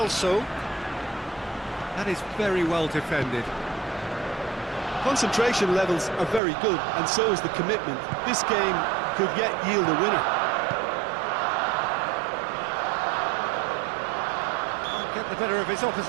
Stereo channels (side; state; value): left; drops out; at 6.4 s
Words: That is very well defended. Concentration levels are very good, and so is the commitment. This game could yet yield a winner. Can't get the better of his